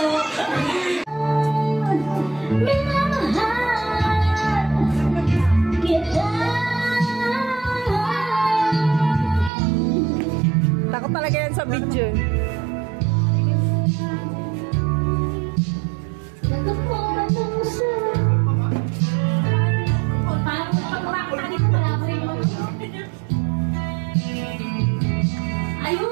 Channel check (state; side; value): drops out; left; at 9.5 s